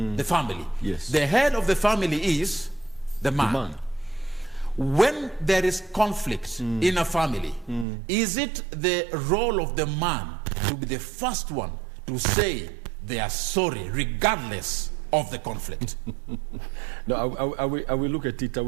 the family. Yes. The head of the family is the man. When there is conflict in a family, is it the role of the man to be the first one to say they are sorry regardless of the conflict? No, I will look at it. I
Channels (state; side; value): drops out; left; at 7.9 s